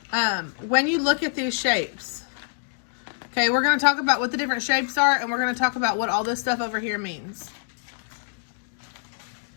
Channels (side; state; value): right; silent; digital silence